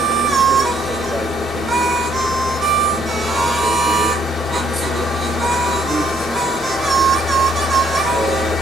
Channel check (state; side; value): normal; both; correlation 0.67